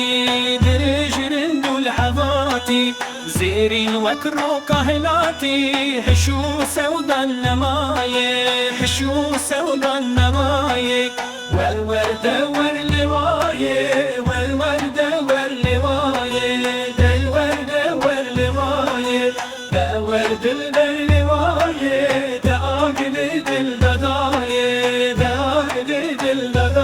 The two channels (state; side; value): identical; both; correlation 1.00